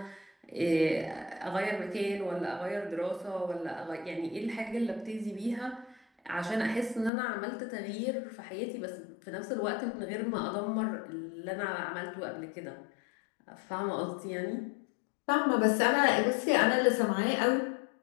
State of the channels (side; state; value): right; drops out; at 7.1 s